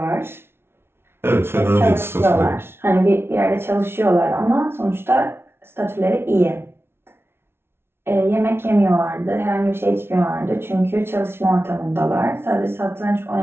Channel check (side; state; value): left; late; 0.12 ms